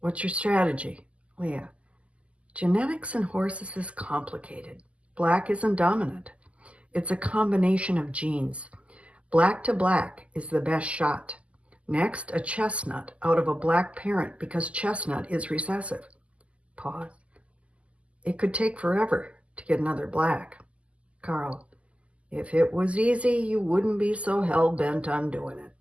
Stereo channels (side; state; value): left; late; 0.061 ms